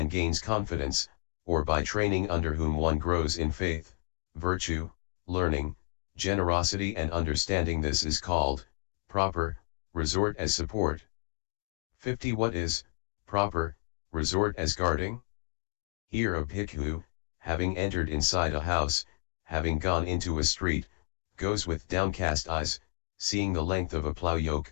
gains confidence, or by training under whom one grows in faith, virtue, learning, generosity and understanding. This is called proper resort as support. 50. What is proper resort as guarding? Here a bhikkhu, having entered inside a house, having gone into a street, goes with downcast eyes, seeing the length of a plough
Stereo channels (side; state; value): right; silent; 57 dB below the other